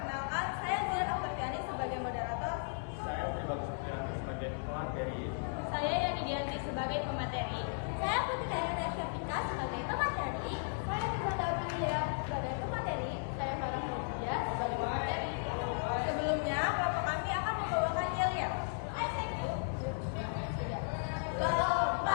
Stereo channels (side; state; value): right; silent; digital silence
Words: saya Zian Aftariani sebagai moderator. Saya Pribadi Supriyanti sebagai pemateri. Saya Yani Dianti sebagai pemateri. Saya Putri Dayana Syafika sebagai pemateri. Saya Ibu sebagai pemateri. Saya Farah Media sebagai pemateri. Sebelumnya, kelompok kami akan membawakan yel-yel.